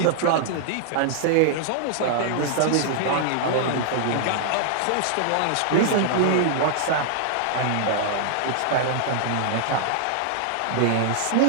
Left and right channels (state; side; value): different; both; correlation -0.01